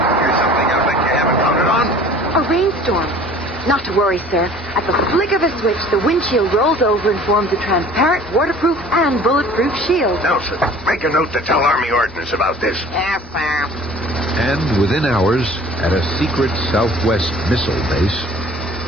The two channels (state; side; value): noise; left; hum, 21 dB below the sound